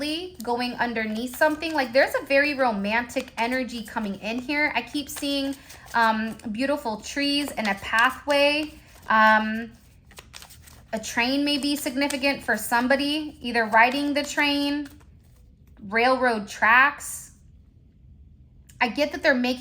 going underneath something. Like there's a very romantic energy coming in here. I keep seeing beautiful trees and a pathway. A train may be significant for somebody, either riding the train, railroad tracks. I get that they're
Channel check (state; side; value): identical; both; correlation 1.00